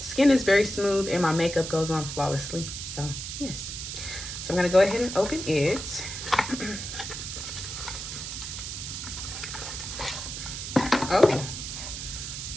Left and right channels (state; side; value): noise; right; hiss, 7 dB below the sound